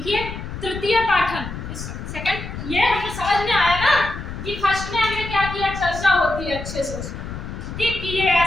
तृतीय पाठन। सेकंड ये हमें समझ में आया ना कि फर्स्ट में हमने क्या किया, चर्चा होती है अच्छे से उसमें, ठीक, कि ये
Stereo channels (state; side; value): noise; left; rumble, 8 dB below the sound